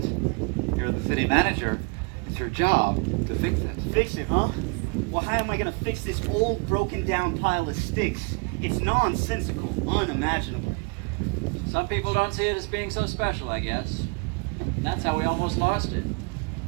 You're the city manager. It's your job to fix it. Fix it, huh? Well, how am I gonna fix this old, broken down pile of sticks? It's nonsensical, unimaginable. Some people don't see it as being so special, I guess. And that's how we almost lost it.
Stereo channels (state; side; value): quieter; left; 34.7 dB